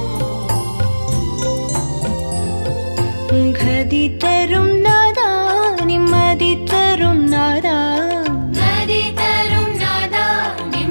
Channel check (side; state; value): both; inverted; correlation -1.00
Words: கதி தரும் நாதா நிம்மதி தரும் நாதா நதி தரும் நாதா